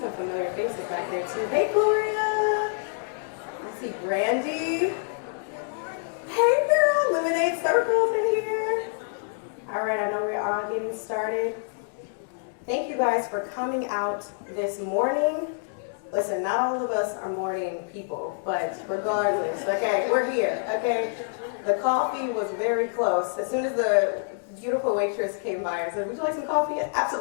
familiar faces back there too. Hey, Gloria. I see Brandy. Hey, girl. Lemonade Circle's in here. All right, I know we're all getting started. Thank you guys for coming out this morning. Listen, not all of us are morning people, but regardless, okay, we're here, okay? The coffee was very close. As soon as the beautiful waitress came by and said, would you like some coffee?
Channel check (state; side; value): silent; right; digital silence